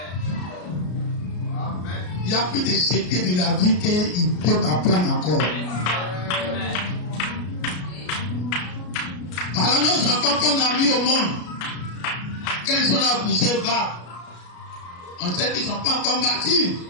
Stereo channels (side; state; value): right; late; 33 ms